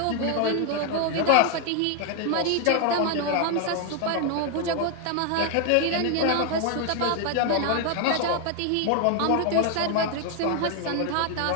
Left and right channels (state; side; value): different; both; correlation 0.01